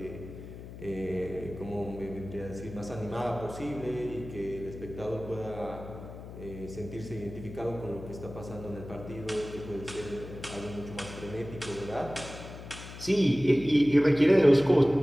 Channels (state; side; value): noise; left; hum, 13 dB below the sound